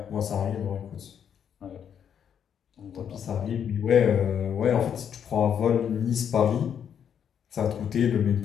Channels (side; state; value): right; quieter; 8.3 dB